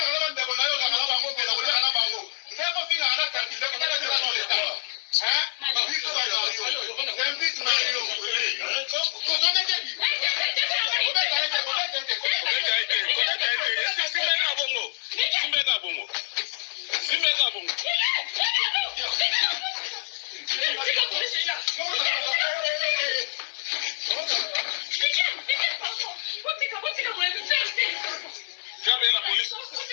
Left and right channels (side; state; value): right; silent; digital silence